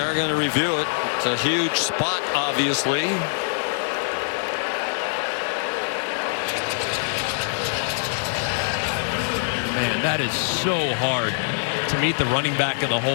going to review it. It's a huge spot, obviously. Man, that is so hard to meet the running back in the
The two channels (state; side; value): silent; right; digital silence